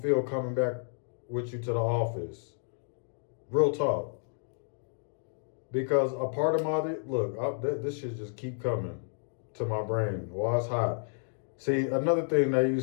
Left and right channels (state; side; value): silent; right; digital silence